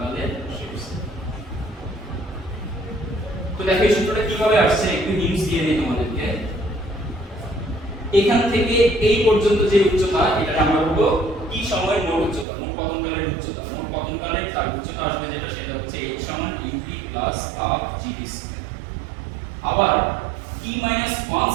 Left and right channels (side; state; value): left; drops out; at 12.5 s